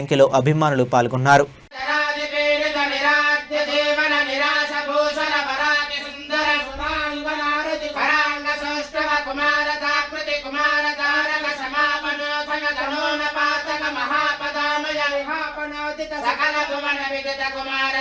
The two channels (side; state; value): both; identical; correlation 1.00